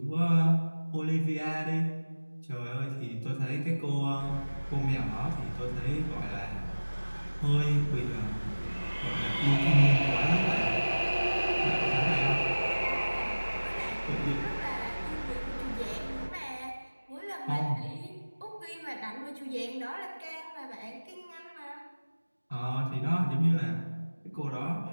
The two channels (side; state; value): both; inverted; correlation -1.00